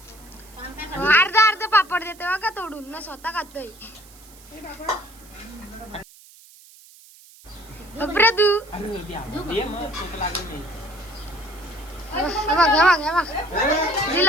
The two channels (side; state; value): right; noise; hiss, 23 dB below the sound